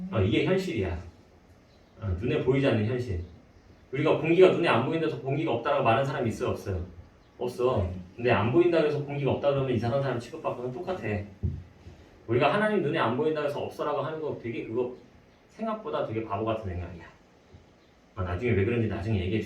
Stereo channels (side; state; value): both; identical; correlation 1.00